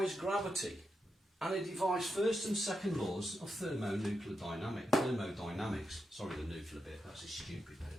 gravity, and it defies first and second laws of thermodynamics. Sorry, the nuclear bit, that's a stupid bit,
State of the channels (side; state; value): both; normal; correlation 0.86